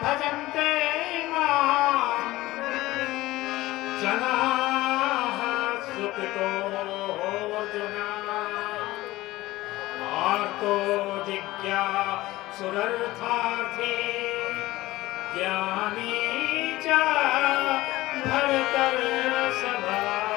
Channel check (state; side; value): quieter; right; 18.0 dB